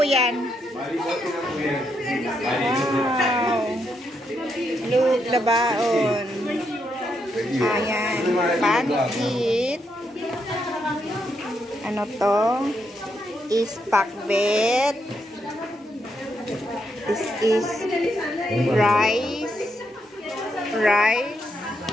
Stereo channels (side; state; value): both; normal; correlation 0.79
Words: yan? Wow. Look, labaon. Ayan. Pancit. Ano to? Is pakbet. This is rice. Rice.